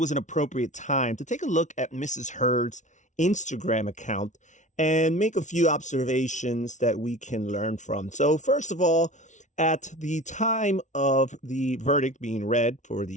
an appropriate time to take a look at Mrs. Heard's Instagram account and make a few observations that we can learn from. So first of all, at the time of the verdict being read for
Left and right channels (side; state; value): right; late; 0.36 ms